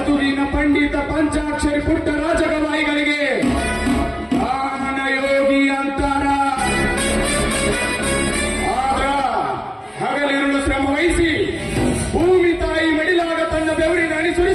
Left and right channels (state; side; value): identical; both; correlation 1.00